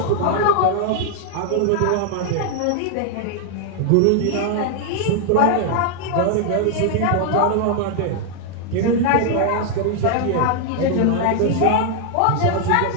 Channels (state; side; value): different; both; correlation 0.00